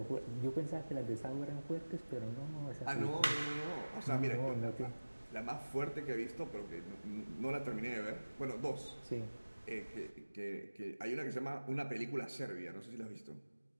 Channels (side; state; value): both; inverted; correlation -1.00